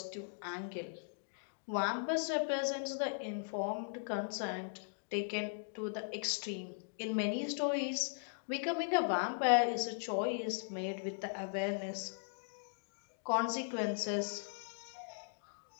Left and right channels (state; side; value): silent; right; digital silence